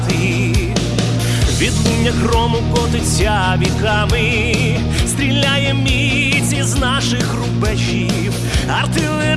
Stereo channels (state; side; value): identical; both; correlation 1.00